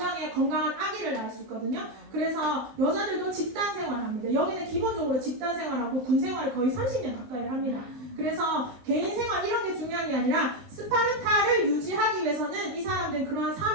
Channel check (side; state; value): left; late; 20 ms